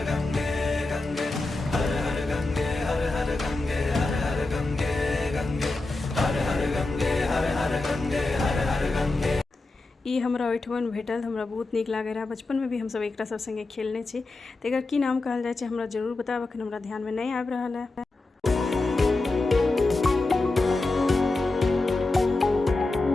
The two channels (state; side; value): quieter; right; 3.2 dB